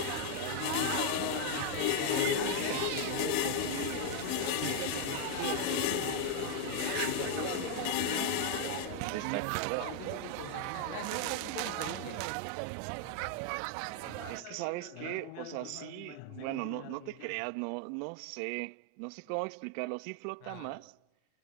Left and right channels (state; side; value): different; both; correlation 0.00